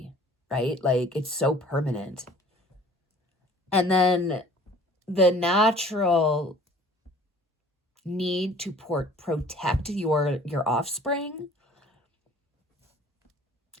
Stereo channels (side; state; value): both; normal; correlation 0.50